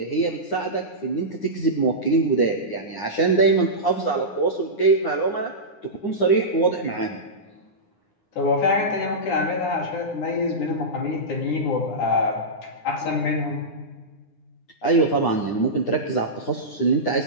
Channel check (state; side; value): late; right; 9.7 ms